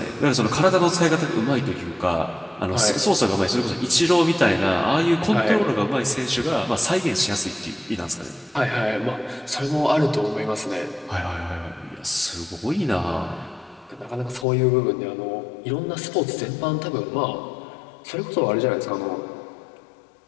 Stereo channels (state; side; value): drops out; right; at 14.5 s